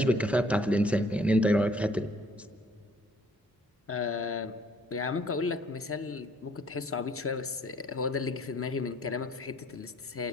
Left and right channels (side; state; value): both; normal; correlation 0.60